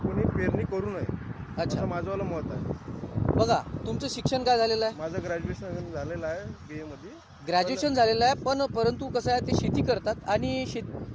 कोणी पेरणी करू नये, अच्छा. असं माझंवालं मत आहे. बघा तुमचं शिक्षण काय झालेलं आहे? माझं ग्रॅज्युएशन झालेलं आहे BA मध्ये. ग्रॅज्युएशन झालेलं आहे, पण परंतु कसं आहे ते शेती करतात आणि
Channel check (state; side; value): identical; both; correlation 1.00